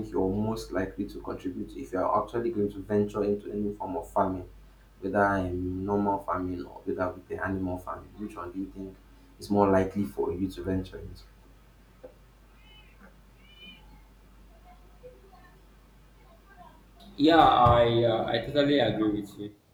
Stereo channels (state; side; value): identical; both; correlation 1.00